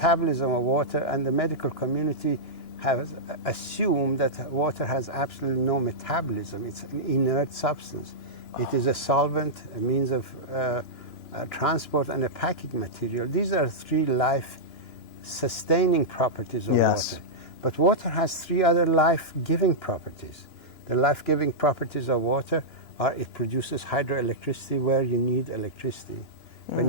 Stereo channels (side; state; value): right; late; 2.9 ms